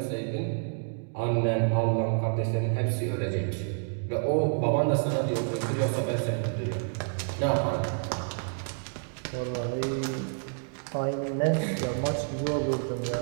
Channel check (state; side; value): silent; left; digital silence